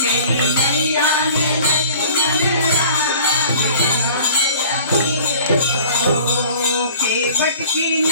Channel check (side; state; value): both; inverted; correlation -0.46